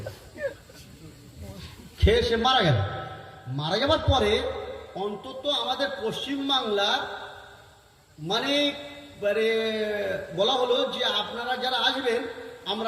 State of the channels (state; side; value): identical; both; correlation 1.00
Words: খেয়ে সে মারা গেল। মারা যাবার পরে অন্তত আমাদের পশ্চিমবাংলার মানে বলা হলো যে আপনারা যারা আসবেন